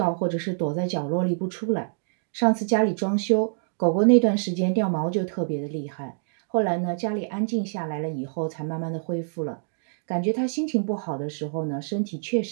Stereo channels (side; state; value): left; silent; 61 dB below the other